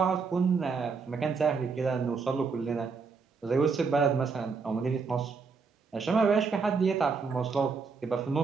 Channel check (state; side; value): quieter; left; 5.0 dB